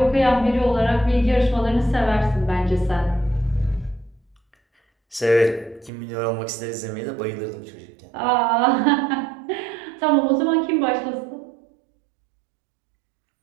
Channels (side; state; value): left; drops out; at 5.9 s